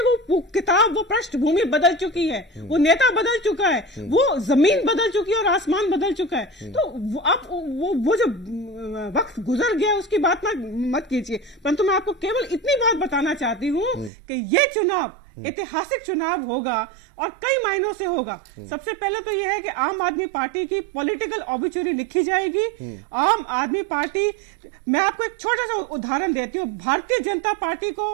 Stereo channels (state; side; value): drops out; left; at 14.1 s